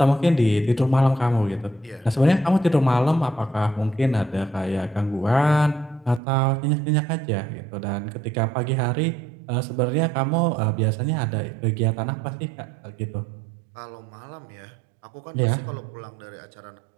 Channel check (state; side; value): drops out; left; at 6.2 s